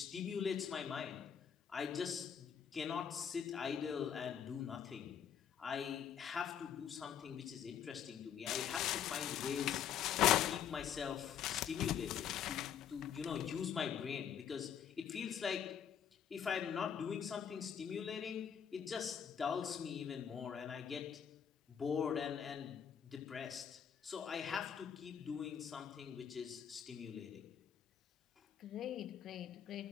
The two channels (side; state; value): right; quieter; 8.5 dB